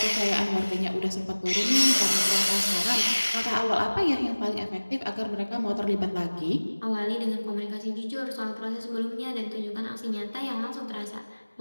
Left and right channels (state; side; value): inverted; both; correlation -1.00